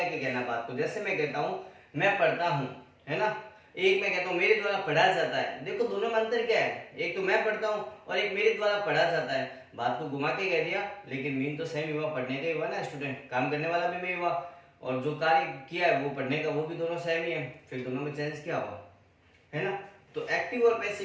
के कहना बात को। जैसे मैं कहता हूँ मैं पढ़ता हूँ, है ना, एक मैं कहता हूँ मेरे द्वारा पढ़ा जाता है। देखो दोनों में अंतर क्या है, एक तो मैं पढ़ता हूँ और एक मेरे द्वारा पढ़ा जाता है। बात को घुमा के कह दिया, लेकिन मीन तो सेम हुआ, पढ़ने का ही हुआ ना स्टूडेंट, काम करने वाला भी मैं हुआ और जो कार्य किया है वो पढ़ने का, वो भी दोनों सेम ही है। फिर दोनों में चेंज क्या हुआ, है ना। तो एक्टिव और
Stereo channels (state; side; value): identical; both; correlation 1.00